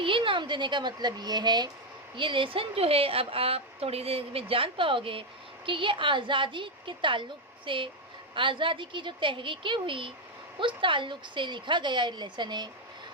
नाम देने का मतलब ये है, ये लेसन जो है अब आप थोड़ी देर में जान पाओगे कि ये आज़ादी के ताल्लुक़ से, आज़ादी की जो तहरीकें हुई उस ताल्लुक़ से लिखा गया लेसन है।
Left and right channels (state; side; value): normal; both; correlation 0.04